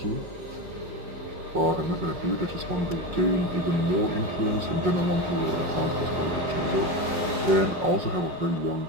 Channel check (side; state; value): left; late; 5.5 ms